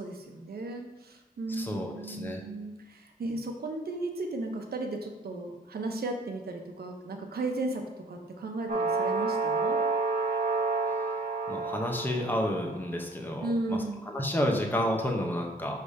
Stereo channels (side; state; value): both; normal; correlation 0.55